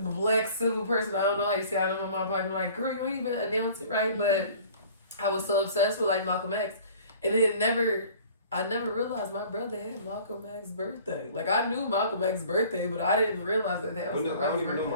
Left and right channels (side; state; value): both; inverted; correlation -0.48